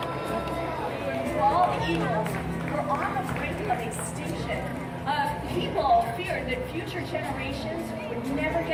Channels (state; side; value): identical; both; correlation 1.00